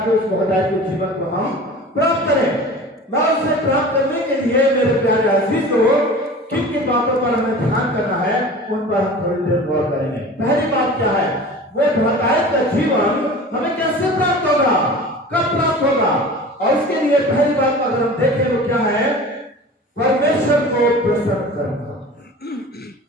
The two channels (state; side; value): normal; both; correlation 0.38